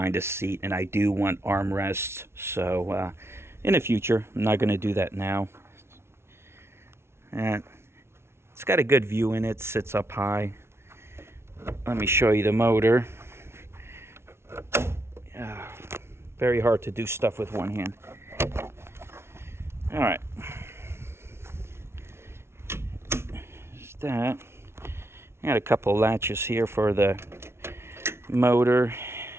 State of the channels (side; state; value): left; late; 0.12 ms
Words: a seat, and I do want armrests. So in the future, I'm not gonna do that now. And it's got a good view in it, sits up high. Let me show you the motor. Very hard to do stuff with one hand. All right. There's that. I got a couple of latches here for the motor